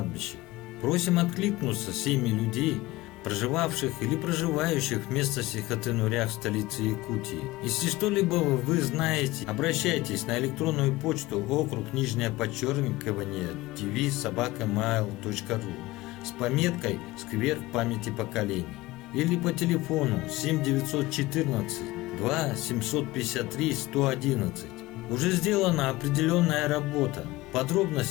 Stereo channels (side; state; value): right; quieter; 19.2 dB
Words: Просим откликнуться семьи людей, проживавших или проживающих в местности Хатынурях, столице Якутии. Если что-либо вы знаете, обращайтесь на электронную почту okruг_tv@mail.ru с пометкой «Сквер памяти поколений» или по телефону 7914 2 753 111. Уже сделана определенная работа.